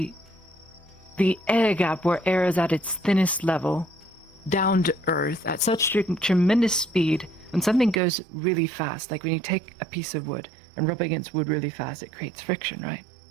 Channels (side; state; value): left; drops out; at 8.0 s